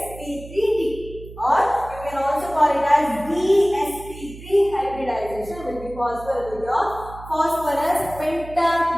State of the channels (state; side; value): noise; right; hum, 15 dB below the sound